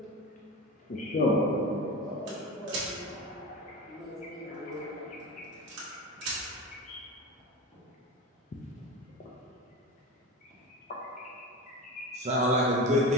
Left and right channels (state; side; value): normal; both; correlation 0.26